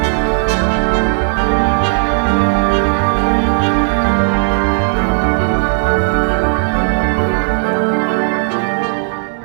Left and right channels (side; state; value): left; silent; digital silence